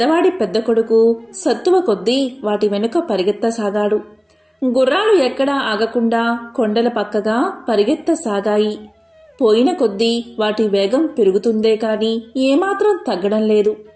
పెద్ద కొడుకు సత్తువ కొద్దీ వాటి వెనుక పరిగెత్తసాగాడు. గుర్రాలు ఎక్కడా ఆగకుండా కొండల పక్కగా పరిగెత్తసాగాయి. పోయిన కొద్దీ వాటి వేగం పెరుగుతుందే కాని ఏమాత్రం తగ్గడం లేదు.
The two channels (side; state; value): both; identical; correlation 1.00